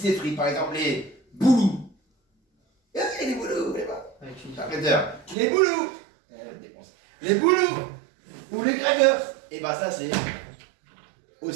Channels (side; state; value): left; drops out; at 5.4 s